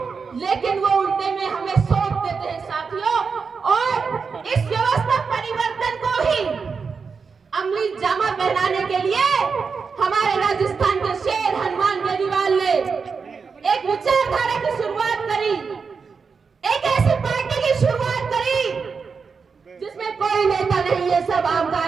लेकिन वो उल्टे में हमें सौंप देते हैं साथियों। और इस व्यवस्था परिवर्तन को ही अमली जामा पहनाने के लिए हमारे राजस्थान के शेर हनुमान बेनीवाल ने एक विचारधारा की शुरुआत करी, एक ऐसी पार्टी की शुरुआत करी जिसमें कोई नेता नहीं है, सब आम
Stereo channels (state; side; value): quieter; left; 5.3 dB